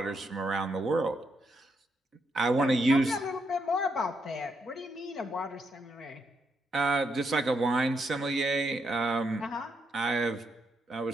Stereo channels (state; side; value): normal; both; correlation 0.79